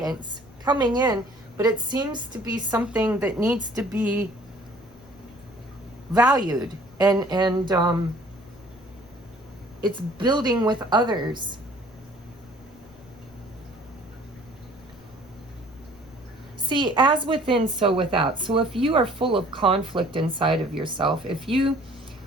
coming in, but it seems to be something that needs to be valued and it's building with others. See, as within, so without. So if you are full of conflict inside of yourself, if you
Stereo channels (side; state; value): left; noise; rumble, 26 dB below the sound